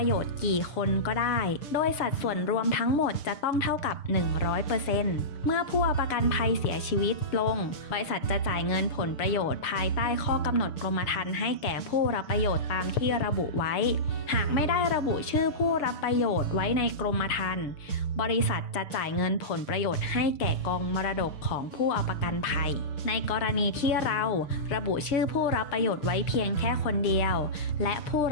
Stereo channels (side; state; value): right; late; 6.7 ms